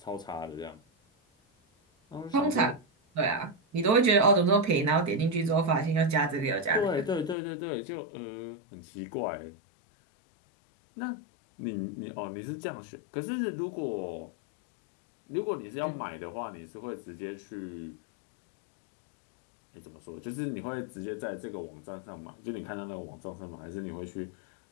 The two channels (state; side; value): drops out; right; at 7.4 s